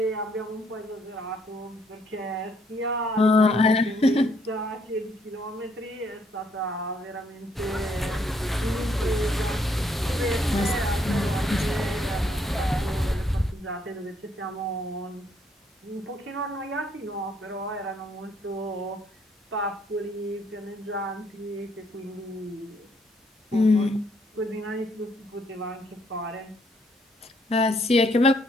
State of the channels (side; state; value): both; normal; correlation 0.69